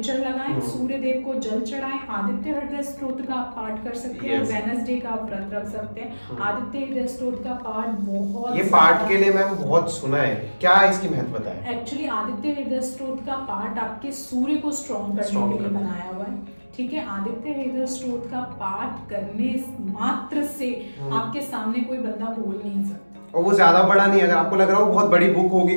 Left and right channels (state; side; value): inverted; both; correlation -1.00